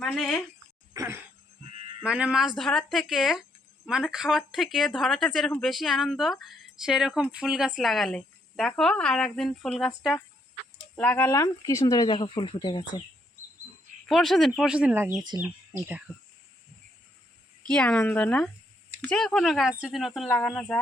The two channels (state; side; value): normal; both; correlation 0.73